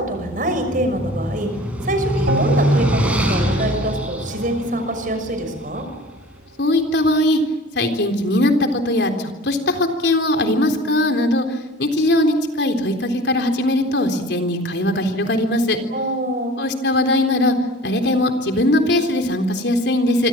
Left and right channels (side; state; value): both; normal; correlation 0.43